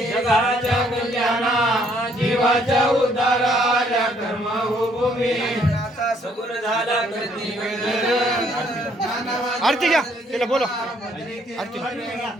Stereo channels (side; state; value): both; normal; correlation 0.66